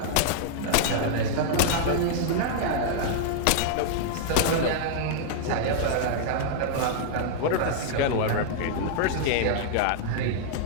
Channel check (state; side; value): different; both; correlation -0.01